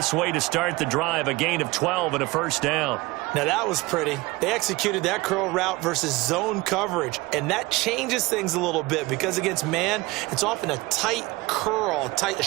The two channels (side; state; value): left; quieter; 21.8 dB